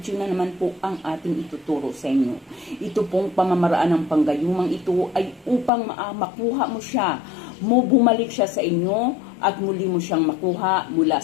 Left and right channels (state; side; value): drops out; right; at 5.7 s